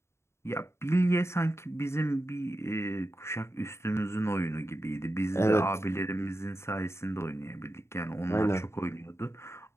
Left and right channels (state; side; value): late; right; 0.13 ms